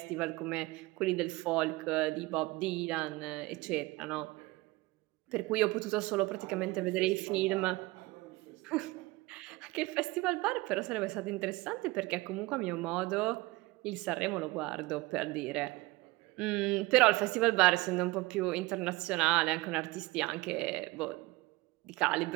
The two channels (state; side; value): quieter; left; 21.5 dB